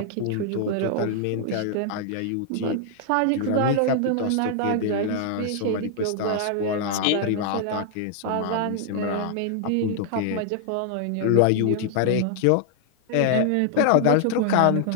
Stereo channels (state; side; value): different; both; correlation 0.00